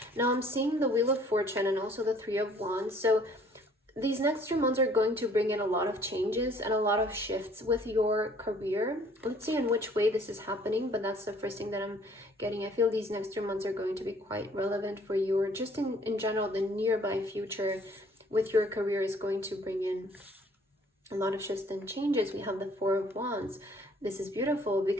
Now I'm seeing the Wheel of Fortune and also the Three of Wands. So these next 3 months are going to bring in a lot of changes and a lot of shifts with your career. Let's see in which way this is happening, but that's the first thing that I'm getting. I feel these next 3 months are going to be quite relevant for you, or just in general, the nearby future with your career is going to bring in a lot of shifts and changes. We have the Four of Wands. This is beautiful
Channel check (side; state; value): both; normal; correlation 0.58